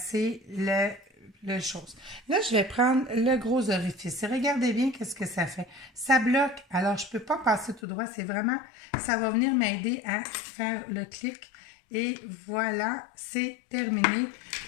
le chose. Là, je vais prendre le gros orifice. Et regardez bien qu'est-ce que ça fait. Ça bloque. Alors, je ne peux pas passer tout droit. C'est vraiment, ça va venir m'aider à faire le clic. Et voilà, c'est terminé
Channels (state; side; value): drops out; right; at 7.8 s